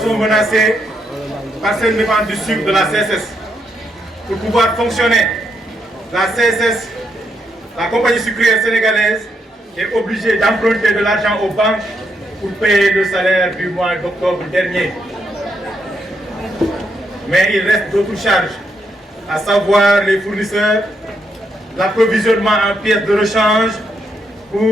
menacés par cette vente du sucre de la CSS. Pour pouvoir fonctionner, la CSS, la compagnie sucrière sénégalaise, est obligée d'emprunter de l'argent aux banques pour payer le salaire du mois d'octobre dernier. Mais il reste d'autres charges, à savoir les fournisseurs, l'approvisionnement en pièces de rechange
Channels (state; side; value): normal; both; correlation 0.78